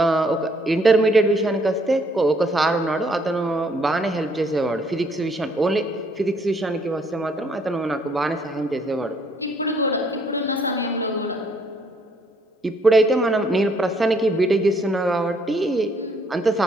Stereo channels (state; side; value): normal; both; correlation 0.66